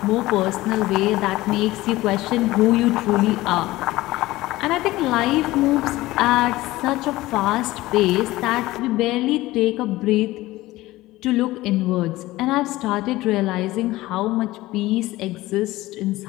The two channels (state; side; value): quieter; right; 18.0 dB